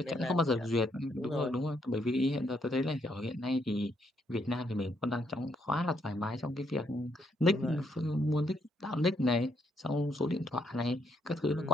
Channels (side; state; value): both; normal; correlation 0.74